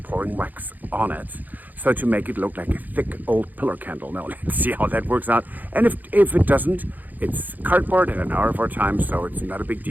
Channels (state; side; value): late; left; 0.084 ms